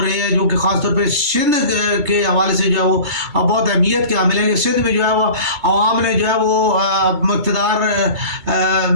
رہے ہیں، جو کہ خاص طور پہ سندھ کے حوالے سے جو ہے وہ بہت اہمیت کے حامل ہیں کہ سندھ میں جو ہے وہ عوام نے جو ہے وہ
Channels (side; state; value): left; late; 2.3 ms